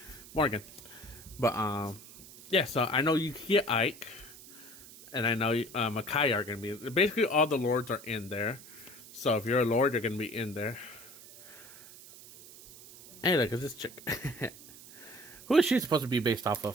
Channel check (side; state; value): right; noise; hiss, 18 dB below the sound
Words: Morgan. But yeah. So I know you can get Ike, and I know Makai are gonna be. Basically, all the lords are in there. So if you're a lord, you're gonna be in there. Hey, look, it's this chick. Who is she supposed to be based off